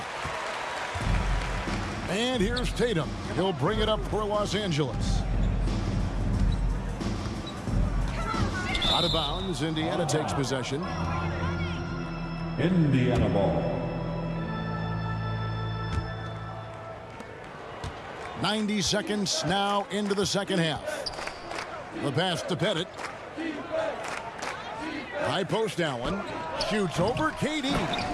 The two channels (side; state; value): both; identical; correlation 1.00